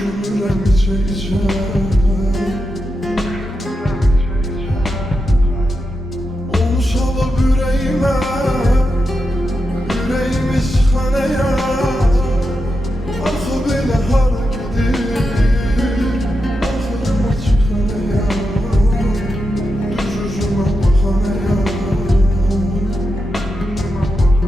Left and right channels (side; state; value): both; normal; correlation 0.88